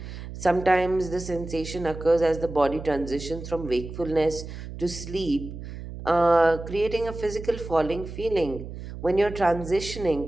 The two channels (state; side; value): noise; right; hum, 10 dB below the sound